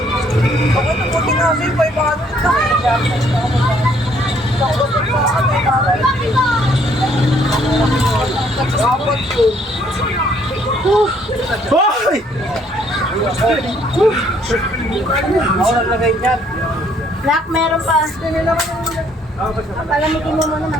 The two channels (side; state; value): both; normal; correlation 0.65